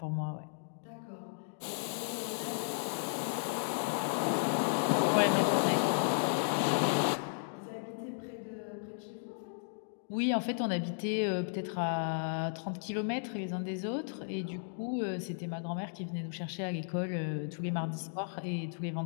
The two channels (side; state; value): right; silent; digital silence